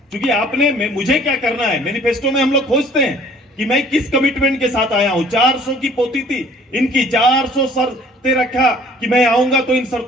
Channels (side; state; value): both; normal; correlation 0.54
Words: क्योंकि आपने मुझे क्या करना है, मैनिफेस्टो में हम लोग खोजते हैं कि मैं किस कमिटमेंट के साथ आया हूं। 400 की पोती थी इनकी, 400 शर्तें रखा कि मैं आऊंगा तो इन